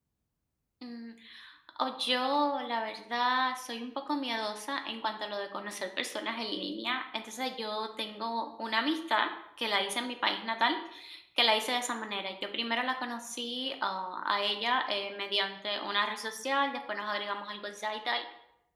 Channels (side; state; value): both; identical; correlation 1.00